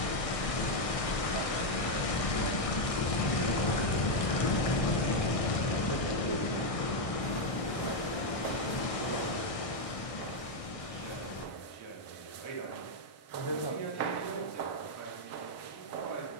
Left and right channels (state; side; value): late; right; 1.6 ms